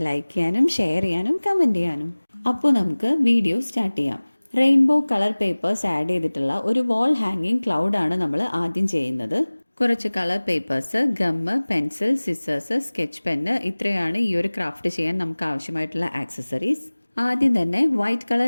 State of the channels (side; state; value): both; inverted; correlation -1.00